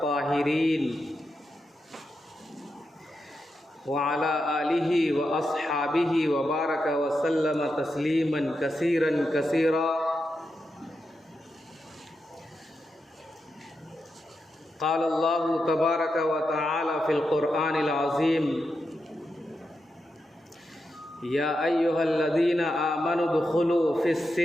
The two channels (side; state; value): both; normal; correlation 0.87